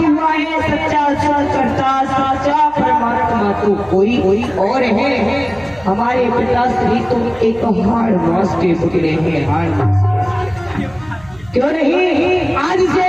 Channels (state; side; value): noise; right; hum, 24 dB below the sound